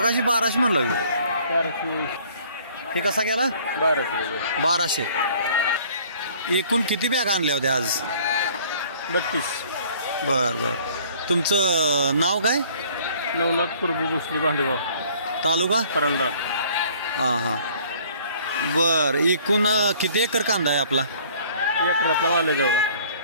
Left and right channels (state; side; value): inverted; both; correlation -0.55